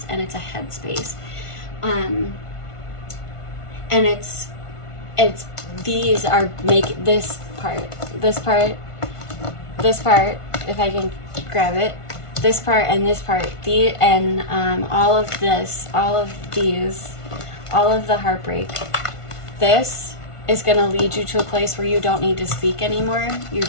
and it's a head space. And these are this part, if I can grab it, this part and this part, all of these, all of the heartbreak, this is going to lead you to a place where you don't need to speak anymore. You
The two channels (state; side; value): late; right; 1.5 ms